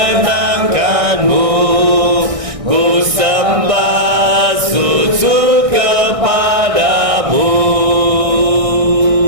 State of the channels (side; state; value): left; late; 1.6 ms